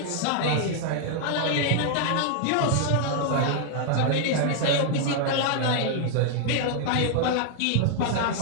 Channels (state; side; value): different; both; correlation 0.00